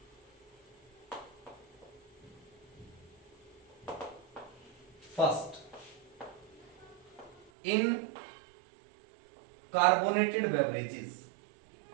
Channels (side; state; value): left; drops out; at 7.5 s